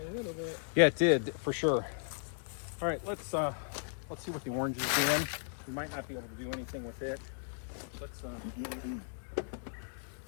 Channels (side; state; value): right; silent; digital silence